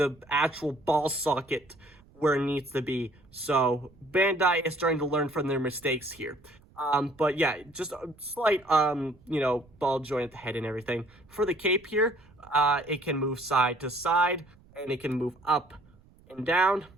actual ball socket where it needs to be. So Bandai is starting to learn from their mistakes here. But yeah, just a slight, ball joint at the head and everything. For the cape here, it can move side to side, and it can move up and down.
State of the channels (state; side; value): noise; right; rumble, 28 dB below the sound